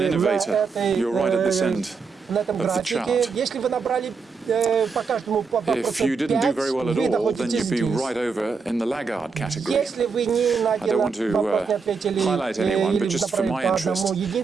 innovator. You're right at this end на этом of the графике, chart. если вы набрали по каждому по If you didn't do very well at вы all, then находитесь you'd be здесь. right over in the laggard category. Если вы ни на I один don't want to вопрос не ответили highlight anyone, but или just for направили my по interest, одному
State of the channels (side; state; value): left; quieter; 5.0 dB